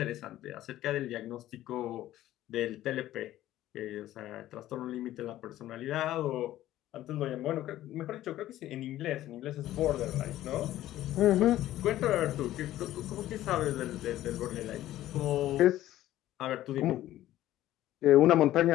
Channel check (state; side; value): quieter; right; 14.0 dB